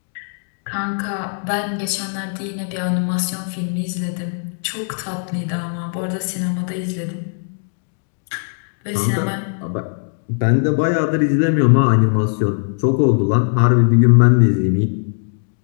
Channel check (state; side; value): silent; right; 66 dB below the other